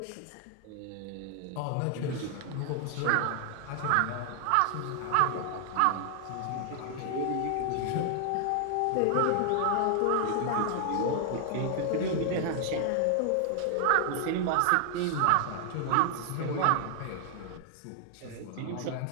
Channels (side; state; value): both; different; correlation 0.00